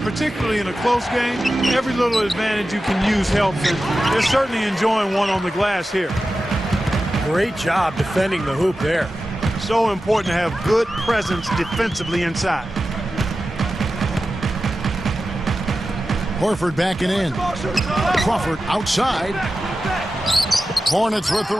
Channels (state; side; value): normal; both; correlation 0.93